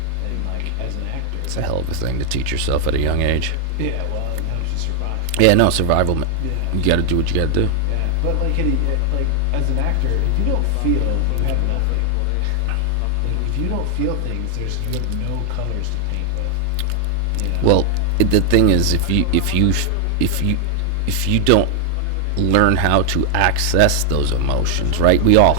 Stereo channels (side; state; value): both; different; correlation 0.00